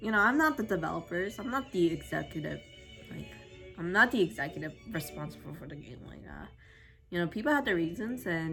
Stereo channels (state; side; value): identical; both; correlation 1.00